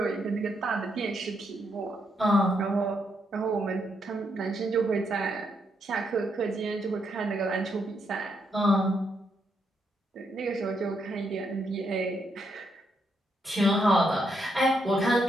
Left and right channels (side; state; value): both; normal; correlation 0.78